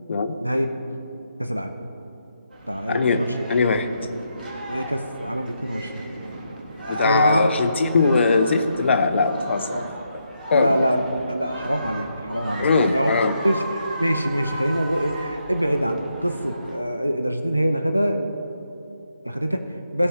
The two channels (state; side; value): inverted; both; correlation -0.80